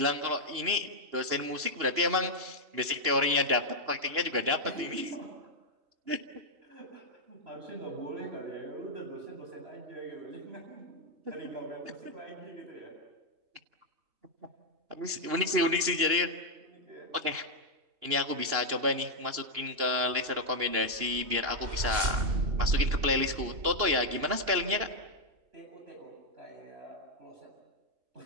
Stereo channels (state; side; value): late; left; 2.9 ms